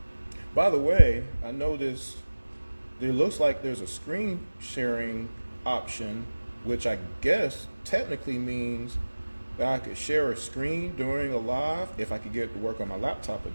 By the way, I noticed there looks like there's a screen sharing option, which I guess technically means that I could share a screen during a live if I could get it to work on my laptop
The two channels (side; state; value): both; inverted; correlation -1.00